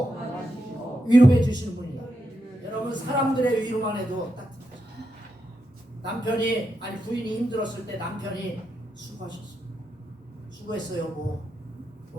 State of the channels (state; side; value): normal; both; correlation 0.85